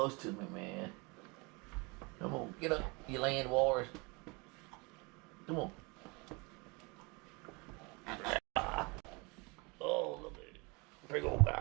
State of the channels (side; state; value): left; quieter; 28.3 dB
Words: to me, man. Come on, get up, you land wars. Come on. Oh, look at it. Big old